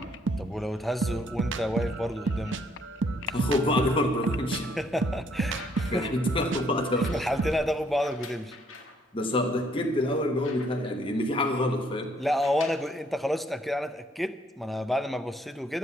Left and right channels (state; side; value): normal; both; correlation 0.67